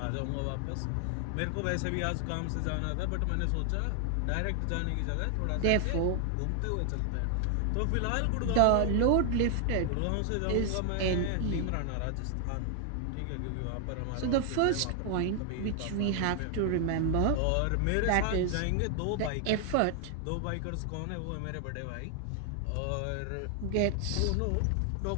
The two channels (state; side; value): different; both; correlation 0.00